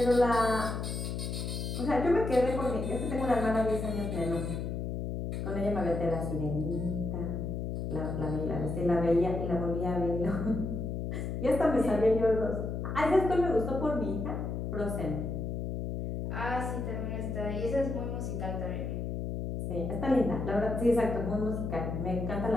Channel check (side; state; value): left; noise; hum, 3 dB below the sound